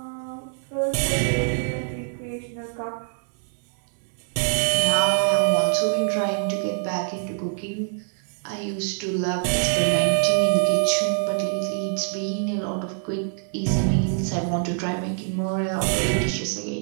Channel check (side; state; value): left; silent; digital silence